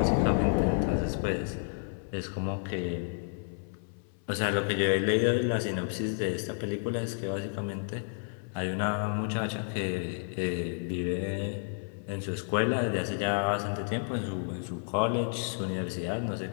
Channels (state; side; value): silent; right; 57 dB below the other